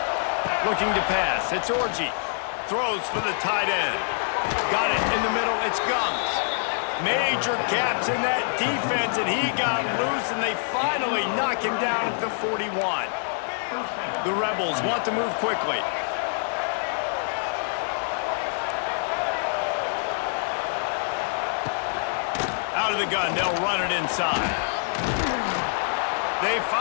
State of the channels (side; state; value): right; silent; digital silence